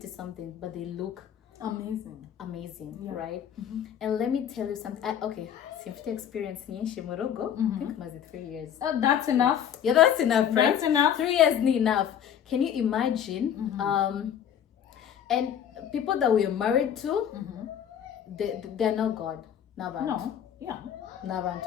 something but they look amazing, right? And let me tell you something. Okay, simfite experience nyinshi mu rugo. I think maze 3 years. That's enough. Yeah, that's enough, right? That's enough. 3 years ni enough. Can you imagine? And people that we are married to, they're not God. Nabantu. No. Yeah.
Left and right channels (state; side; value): quieter; right; 9.2 dB